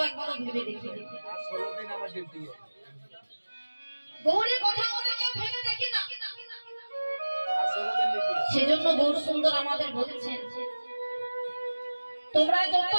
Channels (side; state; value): both; inverted; correlation -1.00